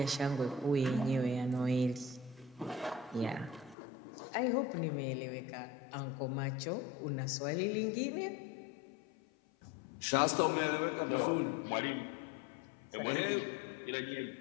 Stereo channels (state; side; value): drops out; right; at 3.8 s